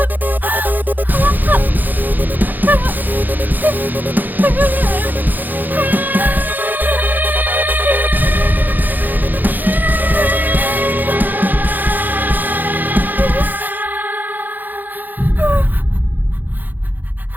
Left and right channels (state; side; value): late; left; 0.086 ms